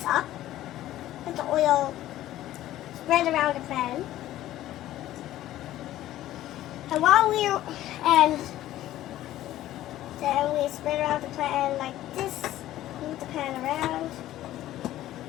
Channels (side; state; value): right; quieter; 14.1 dB